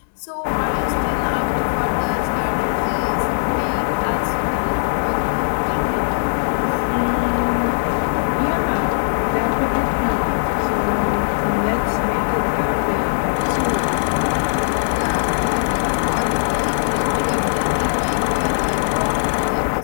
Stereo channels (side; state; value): right; silent; digital silence